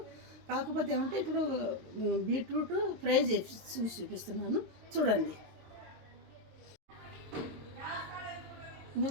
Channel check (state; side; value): late; left; 22 ms